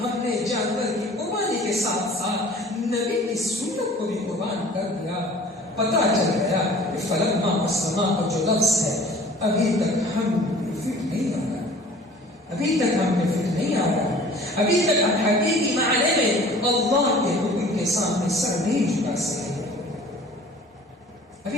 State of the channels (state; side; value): normal; both; correlation 0.48